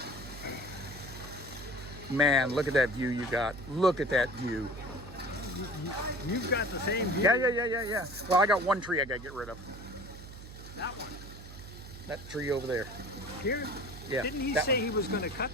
Man, look at that view you got. Look at that view. You've got the same view. Yeah. Well, I got one tree I got to get rid of. That one. That tree over there. Here? Yeah. Didn't he that say one. he was going to cut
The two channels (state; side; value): noise; right; hum, 14 dB below the sound